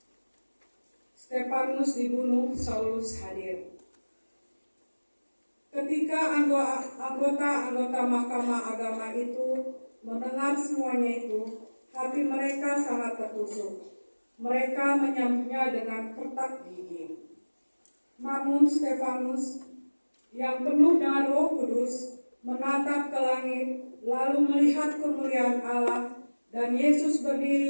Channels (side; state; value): both; inverted; correlation -1.00